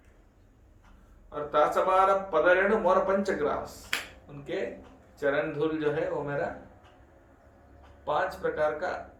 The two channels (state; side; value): identical; both; correlation 1.00